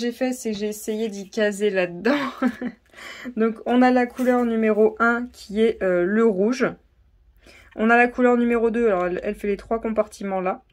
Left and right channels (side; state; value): both; identical; correlation 1.00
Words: fait, c'est que j'ai essayé d'y caser là-dedans. Donc, on a la couleur numéro 1 qui est le rouge. On a la couleur numéro 2, alors elle fait les 3 compartiments là,